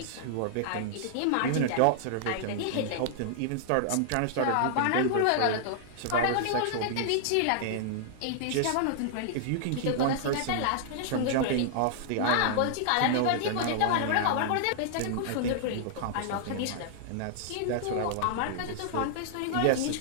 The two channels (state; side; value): different; both; correlation -0.01